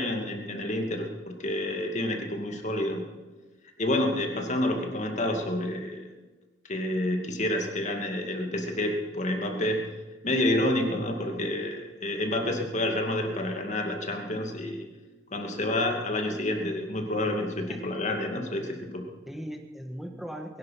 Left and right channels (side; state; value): both; normal; correlation 0.47